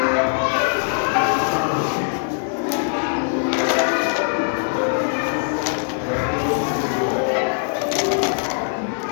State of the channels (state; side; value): silent; right; 64 dB below the other